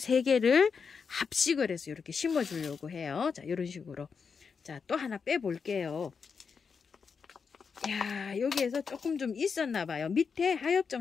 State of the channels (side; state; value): right; quieter; 5.7 dB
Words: 합식을 해서 이렇게 심어 주려고 해요. 자, 이런 식으로. 자, 또 하나 빼 볼게요. 야, 여기에서 조금 좀 있었나 봐요. 밑에 하엽